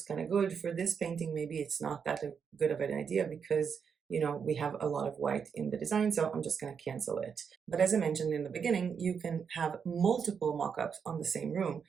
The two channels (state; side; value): quieter; left; 6.6 dB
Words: kind of good. For this painting, maybe it's not that good of an idea because, you know, we have a lot of white in the design, so I'm just going to cancel it. But as I mentioned in the beginning, you can have multiple mockups on the same room.